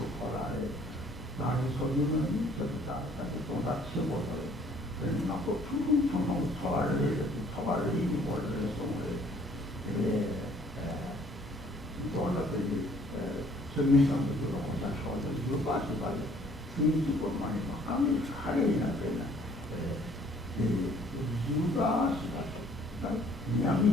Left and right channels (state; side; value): normal; both; correlation 0.59